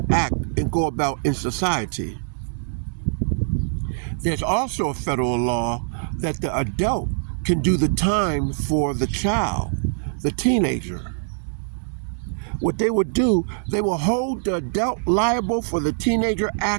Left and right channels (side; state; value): left; silent; digital silence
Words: act and go about in society, there's also a federal law that the adult can do the time for the child, the teenager. What they would do, they will hold the adult liable for the teenager